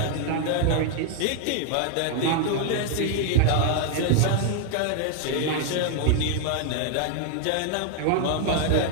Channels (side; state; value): both; different; correlation 0.00